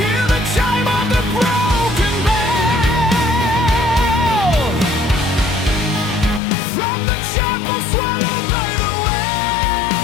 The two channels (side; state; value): right; drops out; at 6.4 s